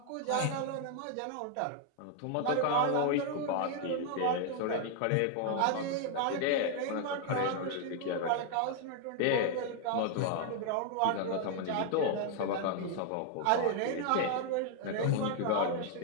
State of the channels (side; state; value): both; different; correlation 0.00